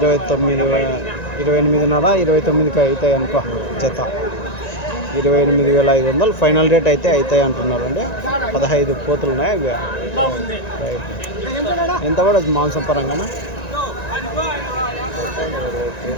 29కి అవుతాయి అనుకో జత. 28,500 ఫైనల్ రేట్ అయితే అవుతాయి అంటున్నారు అండి. 15 పోతులు ఉన్నాయి అవి. రైట్. ఎంత పడదు మాంసం పరంగా?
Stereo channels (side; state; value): right; late; 1.9 ms